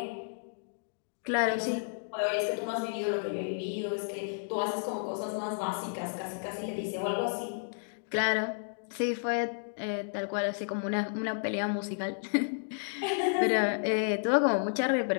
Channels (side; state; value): right; silent; digital silence